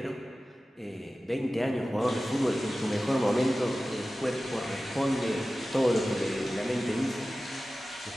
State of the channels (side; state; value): both; normal; correlation 0.95